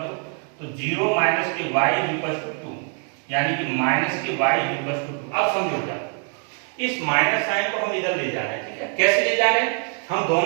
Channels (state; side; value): quieter; left; 38.4 dB